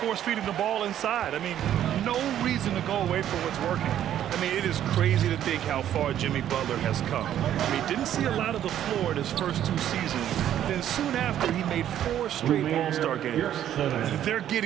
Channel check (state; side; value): quieter; left; 11.0 dB